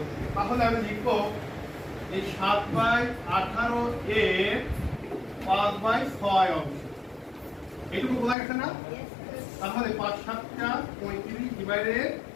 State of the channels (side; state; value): right; drops out; at 8.3 s